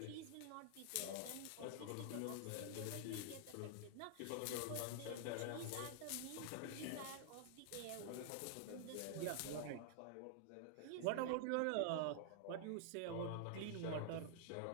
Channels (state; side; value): different; both; correlation -0.01